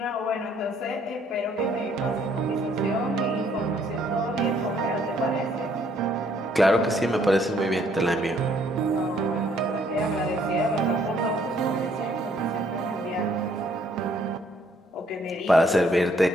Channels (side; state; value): both; normal; correlation 0.65